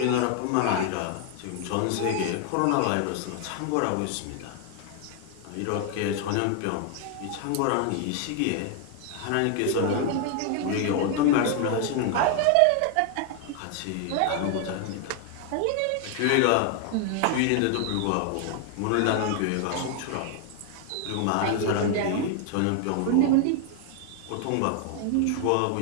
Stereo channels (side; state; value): both; different; correlation 0.00